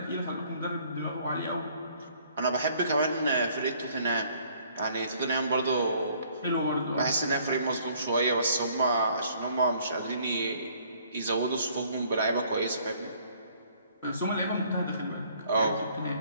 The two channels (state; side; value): inverted; both; correlation -0.61